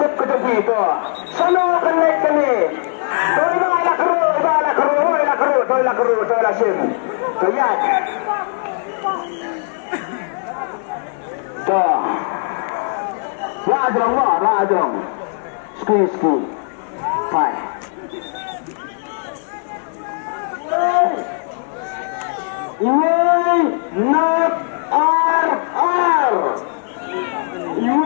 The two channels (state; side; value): silent; right; 57 dB below the other